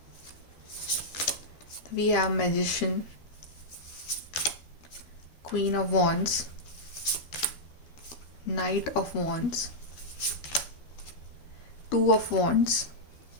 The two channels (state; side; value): late; right; 12 ms